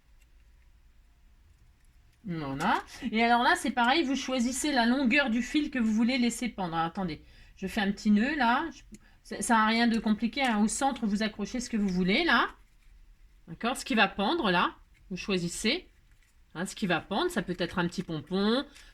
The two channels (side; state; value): both; identical; correlation 1.00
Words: Voilà. Et alors là, c'est pareil, vous choisissez la longueur du fil que vous voulez laisser pendre. Alors, attendez, je fais un petit nœud là. Ça n'a rien de compliqué. Hein. Au centre, vous accrochez ce que vous voulez là. D'accord? Ce qui va pendre là, vous choisissez. Hein, ce qui va pendre, ça peut être un petit pompon,